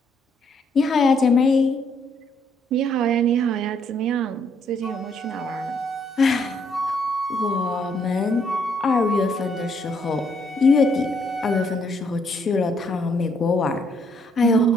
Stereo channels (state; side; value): normal; both; correlation 0.70